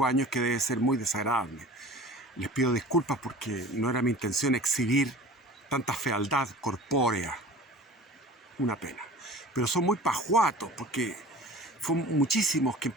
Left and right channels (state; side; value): normal; both; correlation 0.41